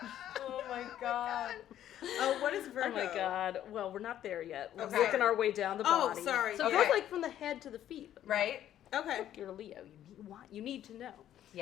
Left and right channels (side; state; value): right; quieter; 11.5 dB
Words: Oh my god. Oh, what is Virgo? Oh my God. Well, we're not there yet. We're Okay. working our way down the Oh, body. sorry. So it Okay. goes like from the head to the feet. Right? Okay. Look, you're a Leo. You need to know.